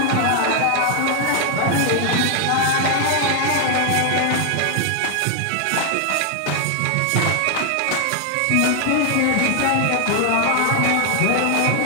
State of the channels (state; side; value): different; both; correlation 0.00